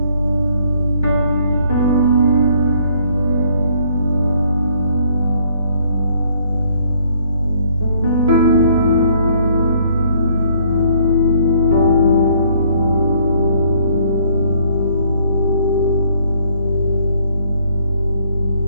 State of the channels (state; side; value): inverted; both; correlation -0.63